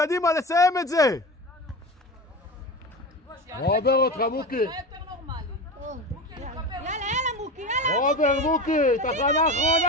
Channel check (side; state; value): both; normal; correlation 0.27